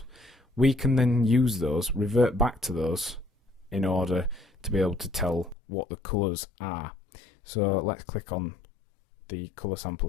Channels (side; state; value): right; drops out; at 5.6 s